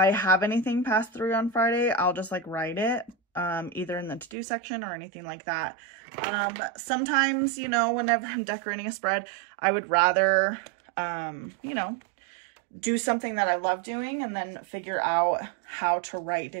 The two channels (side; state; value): left; drops out; at 4.4 s